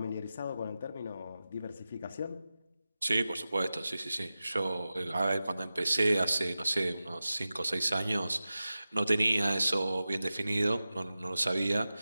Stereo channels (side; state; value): both; inverted; correlation -0.94